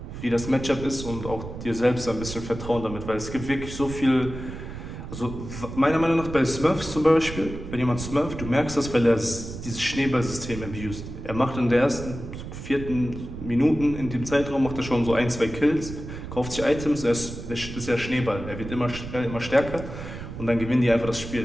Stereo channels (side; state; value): right; noise; rumble, 10 dB below the sound